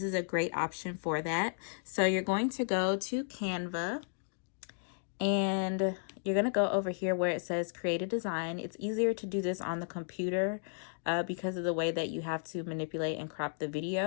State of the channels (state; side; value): silent; right; digital silence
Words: is a great option for that. So you're going to go to Canva and you're going to go over here where it says create a design. It's easier to do this on the computer because of the way that you have to manipulate and crop the